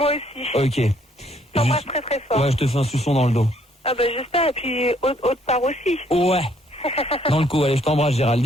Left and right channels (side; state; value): both; normal; correlation 0.66